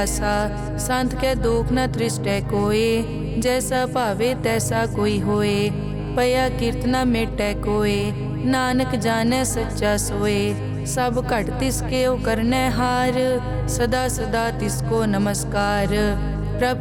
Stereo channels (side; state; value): both; identical; correlation 1.00